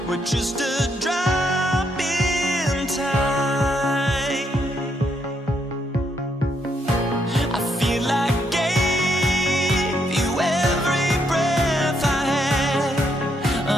We're just a drop in time. I feel like I gave you every breath I had.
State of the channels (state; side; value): normal; both; correlation 0.75